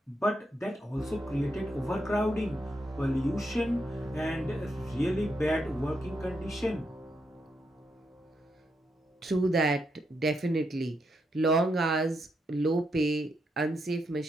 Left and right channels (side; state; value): both; normal; correlation 0.81